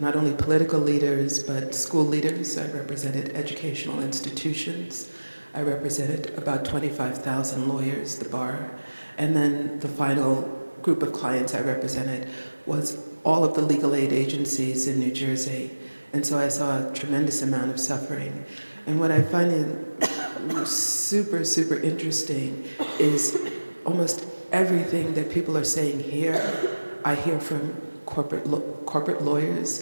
not only political leaders but school leaders. I represented educational institutions. I represented about 25,000 lawyers, the bar. And then the final group of clients I represented was all of the legal aid agencies in New Jersey. And so I saw a tremendous amount of suffering. And what I find super, super interesting is almost everything that people are saying here, I hear from corporate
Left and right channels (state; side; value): inverted; both; correlation -1.00